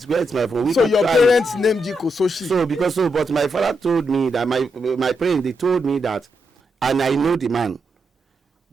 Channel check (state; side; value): normal; both; correlation 0.83